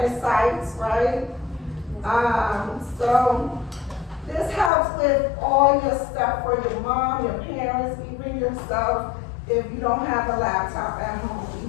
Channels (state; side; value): drops out; right; at 4.7 s